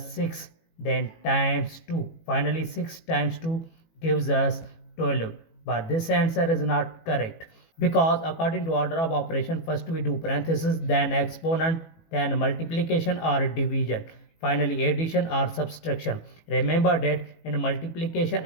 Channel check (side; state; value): right; late; 18 ms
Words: 6. Then times 2. Finally 6 times 2 gives us 12. But this answer is not correct, because according to order of operation, first we do parenthesis, then exponent, then multiplication or division, finally addition or subtraction. Remember that in multiplication